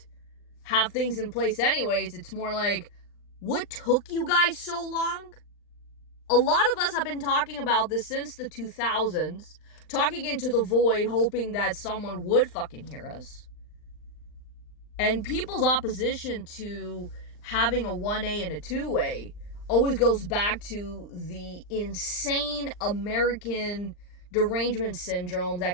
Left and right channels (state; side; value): late; right; 39 ms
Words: have things in place anyways. It's more like, what took you guys so long? A lot of us have been talking about this since the 2000s, talking into the void, hoping that someone would fucking hear us. And people's opposition to having a 1A and a 2A always goes back to the insane American derangement syndrome